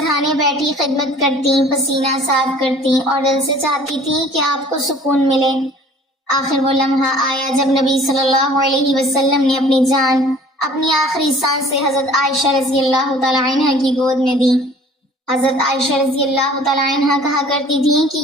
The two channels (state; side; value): normal; both; correlation 0.51